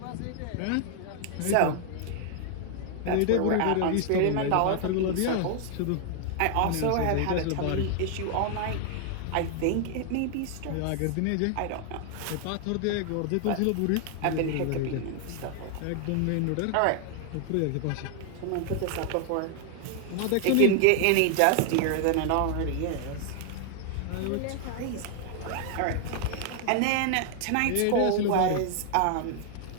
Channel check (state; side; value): different; both; correlation 0.00